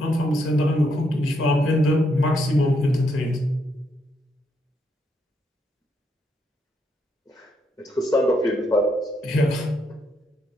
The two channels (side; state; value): both; normal; correlation 0.77